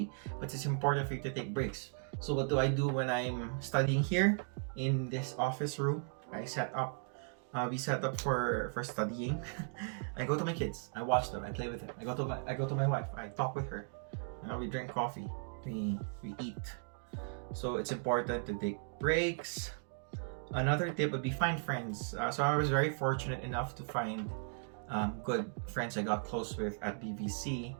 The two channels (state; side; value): silent; left; 53 dB below the other